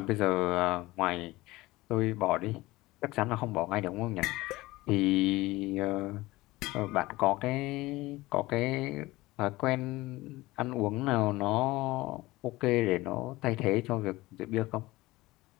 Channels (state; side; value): quieter; right; 19.6 dB